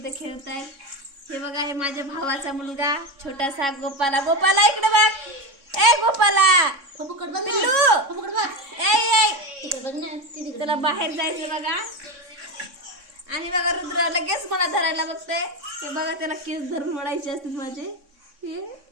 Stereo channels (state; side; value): late; left; 3.6 ms